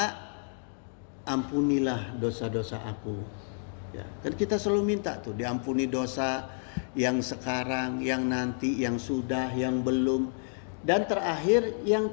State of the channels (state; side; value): silent; right; 58 dB below the other